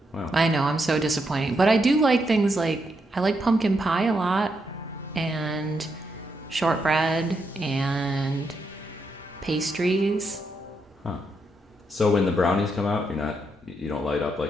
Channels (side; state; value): both; normal; correlation 0.80